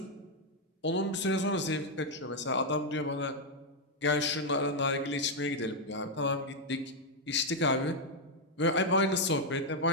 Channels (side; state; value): both; normal; correlation 0.01